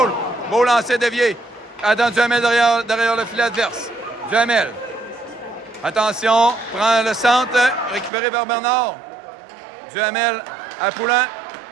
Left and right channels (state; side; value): drops out; left; at 8.1 s